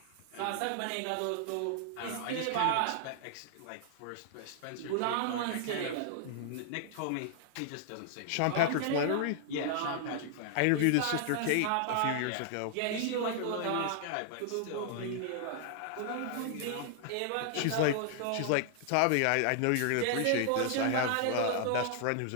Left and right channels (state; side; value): different; both; correlation 0.00